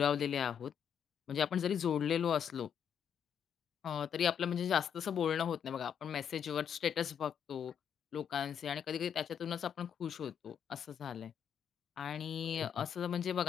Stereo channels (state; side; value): quieter; right; 8.2 dB